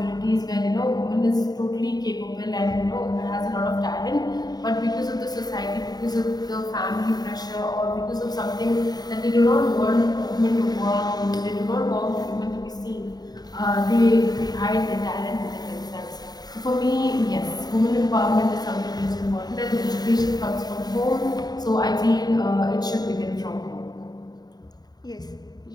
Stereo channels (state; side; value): late; right; 0.19 ms